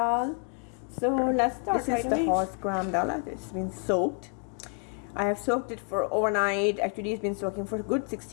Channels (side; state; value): right; quieter; 39.4 dB